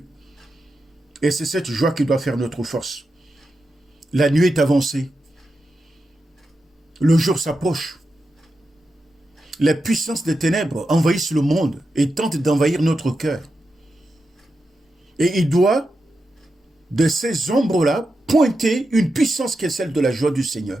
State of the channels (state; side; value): normal; both; correlation 0.88